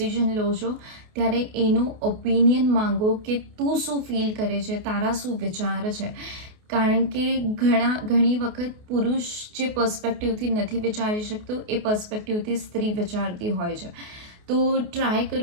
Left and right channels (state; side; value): late; left; 28 ms